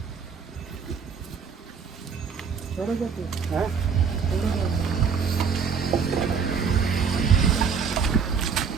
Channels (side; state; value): left; quieter; 6.2 dB